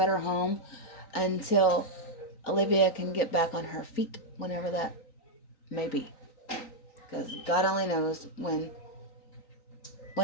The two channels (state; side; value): late; right; 3.9 ms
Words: home until Olivia can get back on her feet, whenever that may be. Because God only knows when